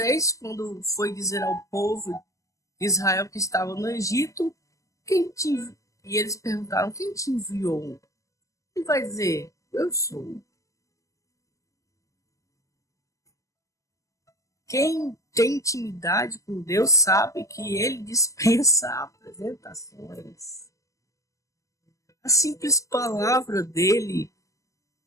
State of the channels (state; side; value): late; right; 0.16 ms